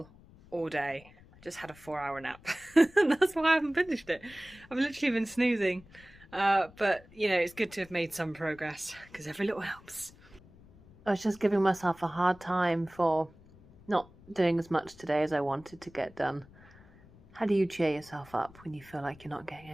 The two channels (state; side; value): noise; left; rumble, 24 dB below the sound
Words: all day. I just had a 4-hour nap and that's why I haven't finished it. I've literally been snoozing, but you know, it's good to have made some progress because every little helps. I was just giving myself a hard time for not doing as much today as I wanted to get done. How do you cheer yourself up when you feel like you're not getting